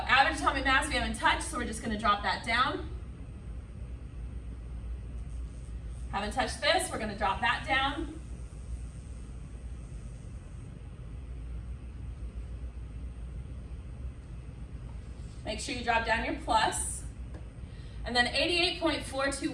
atomic mass we haven't touched, so we're just going to drop that down. Haven't touched this, we're going to drop that down. Make sure you drop down your plus. And then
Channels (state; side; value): identical; both; correlation 1.00